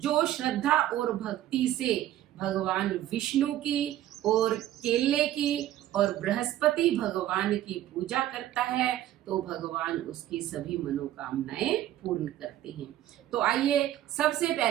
श्रद्धा और भक्ति से भगवान विष्णु की और केले की और बृहस्पति भगवान की पूजा करता है तो भगवान उसकी सभी मनोकामनाएं पूर्ण करते हैं। तो आइए सबसे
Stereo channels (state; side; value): quieter; left; 13.1 dB